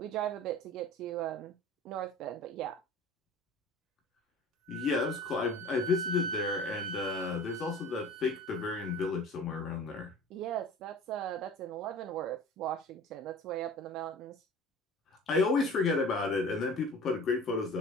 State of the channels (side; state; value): both; normal; correlation 0.40